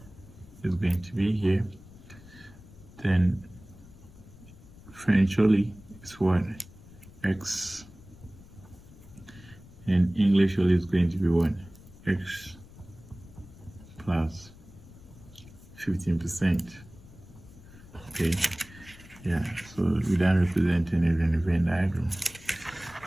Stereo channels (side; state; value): left; noise; rumble, 21 dB below the sound